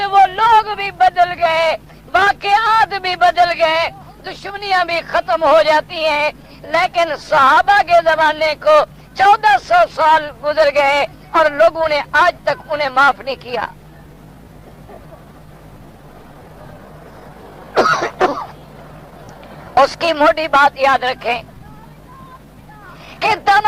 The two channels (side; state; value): both; identical; correlation 1.00